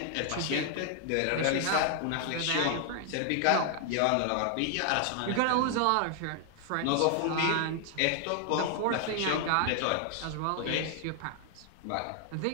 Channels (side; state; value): both; different; correlation 0.00